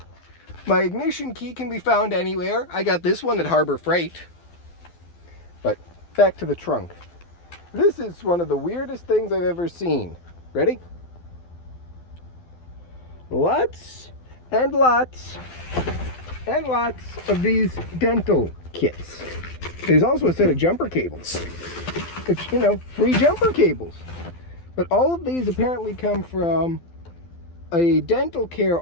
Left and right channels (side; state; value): right; late; 12 ms